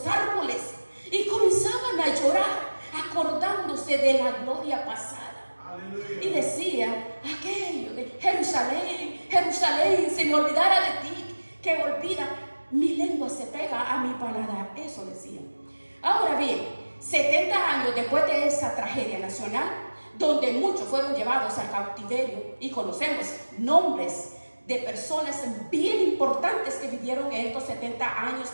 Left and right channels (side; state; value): both; inverted; correlation -1.00